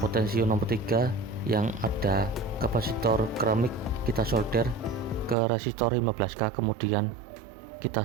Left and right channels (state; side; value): drops out; left; at 5.4 s